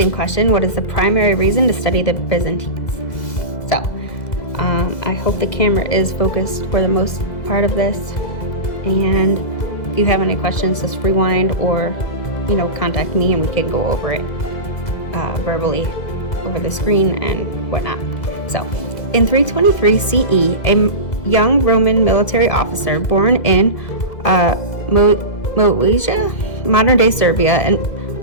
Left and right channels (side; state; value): right; late; 2.1 ms